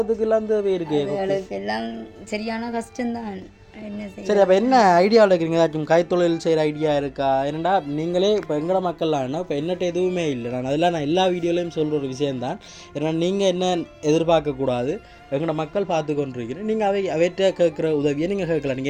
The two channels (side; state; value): both; identical; correlation 1.00